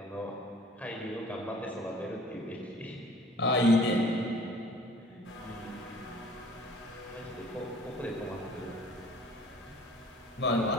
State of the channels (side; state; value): both; normal; correlation 0.50